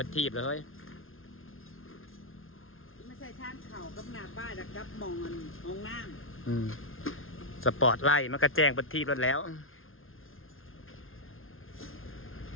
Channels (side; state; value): right; late; 0.60 ms